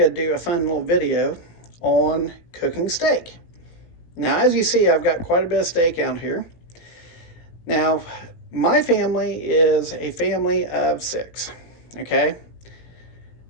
to do a fun little video on cooking steak. Now, as you see, I've got quite a bit of steak out here. Now, my family is a family of six, okay,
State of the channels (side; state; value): right; late; 18 ms